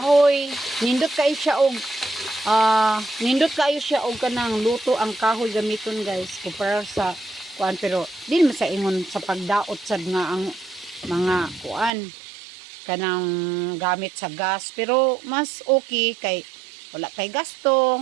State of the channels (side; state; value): left; drops out; at 11.9 s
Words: Nindot kayo siya og kanang luto ang kahoy gamiton guys kumpara sa kuan, pero din man sa ingon sa pagdaot sad nga ang mga kuan kanang gamit sa gas, pero mas okay kay wala kay